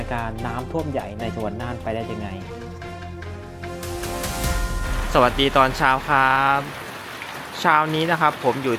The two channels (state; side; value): identical; both; correlation 1.00